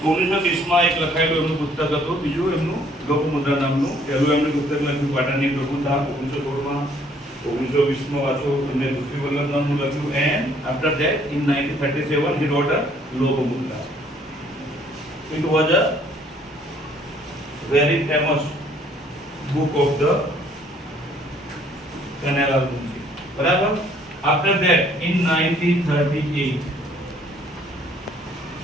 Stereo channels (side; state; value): both; normal; correlation 0.62